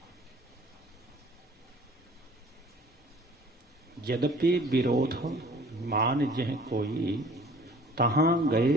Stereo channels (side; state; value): both; normal; correlation 0.50